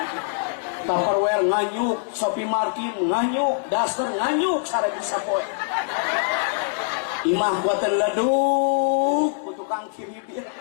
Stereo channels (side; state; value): right; silent; digital silence